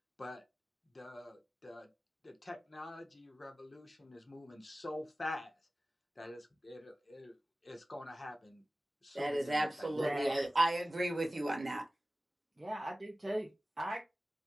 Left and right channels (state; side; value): normal; both; correlation 0.96